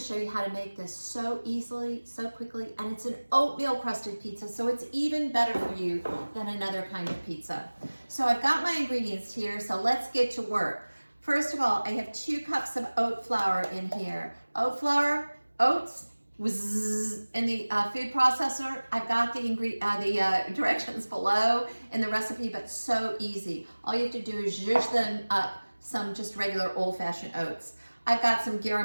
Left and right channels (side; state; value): both; inverted; correlation -1.00